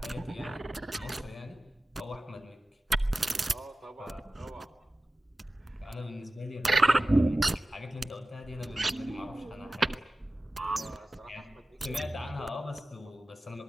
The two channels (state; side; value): normal; both; correlation 0.96